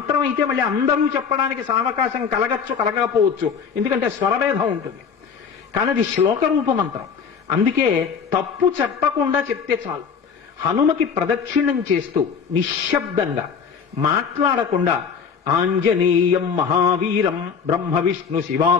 అయితే మళ్ళీ అందరూ చెప్పడానికి సావకాశం కలగచ్చు, కలగకపోవచ్చు, ఎందుకంటే స్వరభేదం ఉంటుంది. కానీ అది శ్లోక రూప మంత్రం. అందుకే తప్పు చెప్పకుండా చెప్తే చాలు. హనుమకి ప్రదక్షిణం చేస్తూ నిశ్శబ్దంగా మాట్లాడకుండా ఆంజనేయం మహావీరం బ్రహ్మ విష్ణు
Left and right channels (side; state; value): right; quieter; 6.4 dB